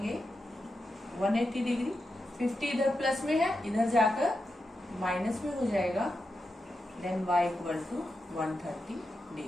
180 डिग्री। 50 इधर प्लस में है, इधर जाकर माइनस में हो जाएगा, then y equal to 130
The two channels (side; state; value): both; normal; correlation 0.88